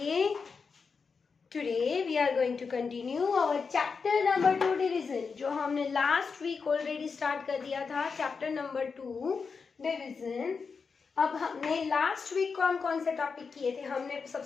Today we are going to continue our chapter number 2 division जो हमने last week already start कर दिया था. chapter number 2 division. अब हमने last week कौन कौन से टॉपिक किए थे? हमने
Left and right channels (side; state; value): right; quieter; 5.2 dB